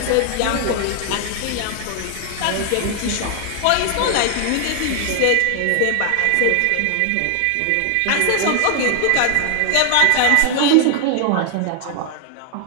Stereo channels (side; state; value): both; different; correlation 0.00